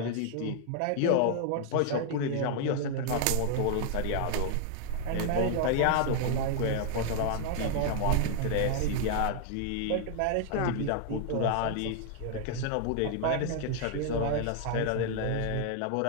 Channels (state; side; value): different; both; correlation 0.00